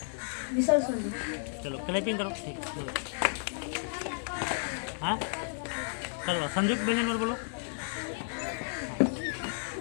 विसर्ग संधि। चलो क्लैपिंग करो। ठीक हाँ चलो संयुक्त व्यंजन वर्ण बोलो।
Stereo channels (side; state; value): right; silent; digital silence